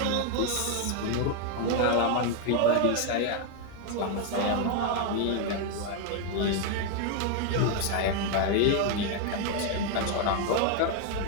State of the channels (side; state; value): both; different; correlation 0.01